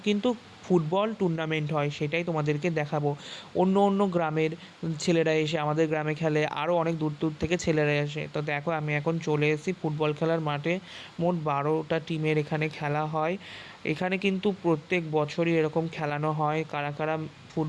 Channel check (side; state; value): both; identical; correlation 1.00